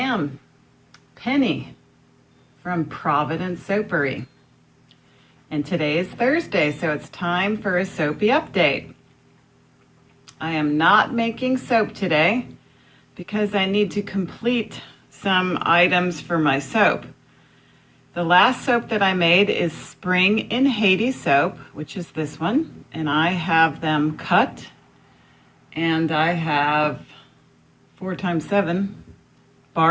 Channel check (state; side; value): identical; both; correlation 1.00